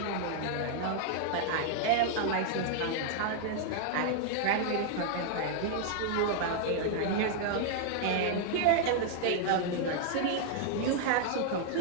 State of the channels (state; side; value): different; both; correlation 0.00